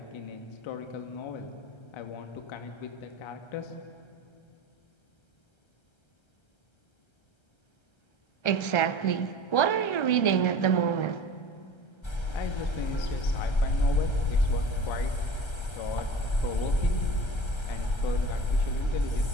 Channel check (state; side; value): late; right; 1.3 ms